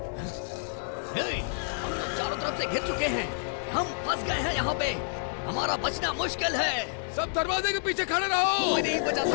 हम लोग चारों तरफ से घिर चुके हैं। हम फंस गए हैं यहाँ पे। हमारा बचना मुश्किल है। सब दरवाजे के पीछे खड़े रहो। कोई नहीं बचा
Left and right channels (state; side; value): silent; right; digital silence